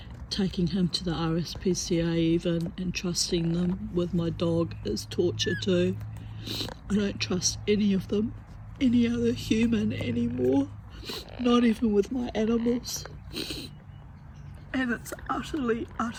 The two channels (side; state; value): both; identical; correlation 1.00